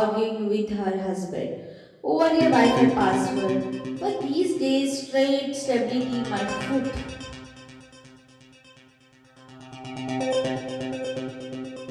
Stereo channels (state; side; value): identical; both; correlation 1.00